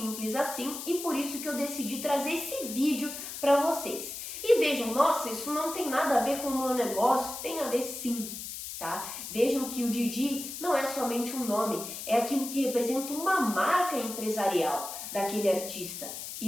assim, e por isso que eu decidi trazer esse vídeo para vocês. E vejam, nossa, isso não tem nada a ver com o meu negócio, tem a ver sim, tá? Vejam que o Didi não é somente um nome, é aquilo que representa uma marca empresarial daquele artista.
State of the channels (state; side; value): noise; left; hiss, 8 dB below the sound